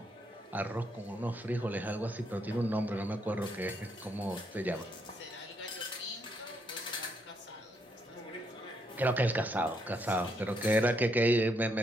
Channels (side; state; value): both; normal; correlation 0.75